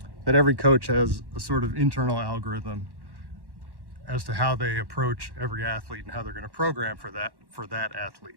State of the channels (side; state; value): left; late; 1.1 ms